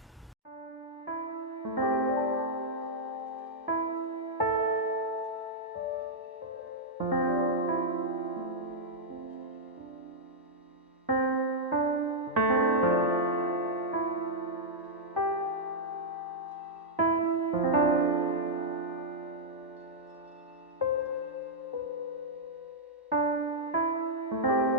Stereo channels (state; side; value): normal; both; correlation -0.06